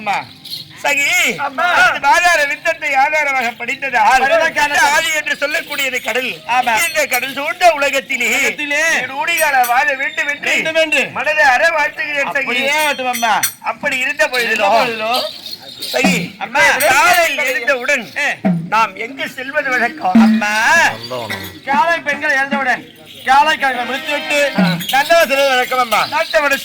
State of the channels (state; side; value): identical; both; correlation 1.00